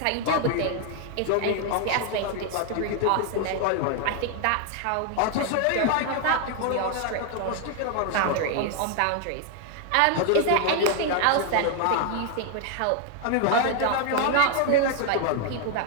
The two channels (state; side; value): different; both; correlation 0.00